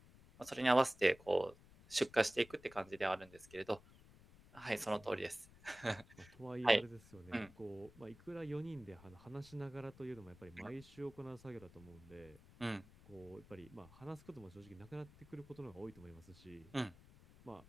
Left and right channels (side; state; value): left; noise; rumble, 22 dB below the sound